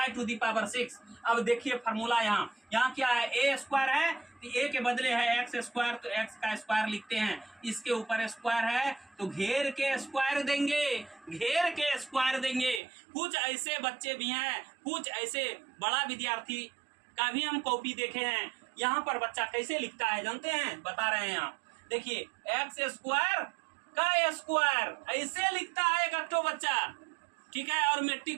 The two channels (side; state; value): left; drops out; at 12.8 s